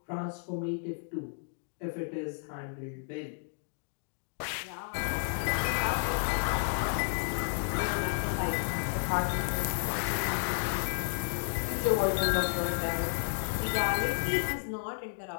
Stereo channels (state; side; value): silent; right; digital silence